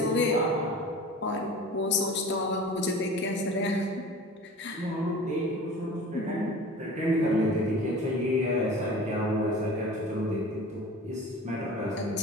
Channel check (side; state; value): both; normal; correlation 0.39